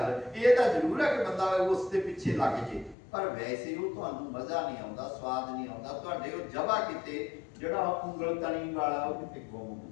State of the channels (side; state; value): right; drops out; at 3.0 s